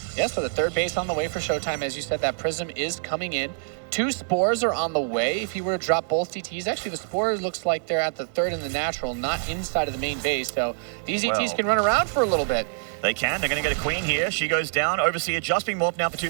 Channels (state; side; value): silent; left; digital silence